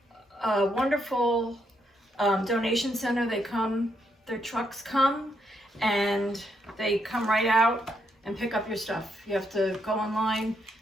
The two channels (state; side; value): normal; both; correlation 0.77